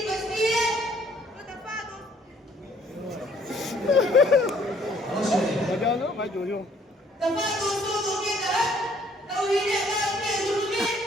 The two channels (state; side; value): normal; both; correlation 0.62